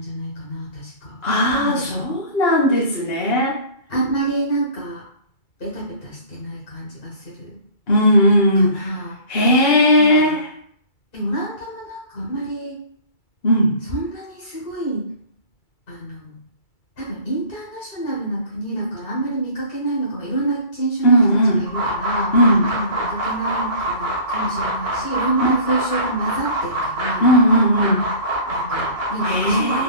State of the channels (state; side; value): late; right; 2.3 ms